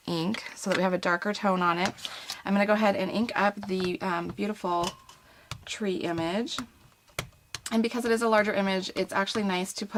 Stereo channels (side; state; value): both; identical; correlation 1.00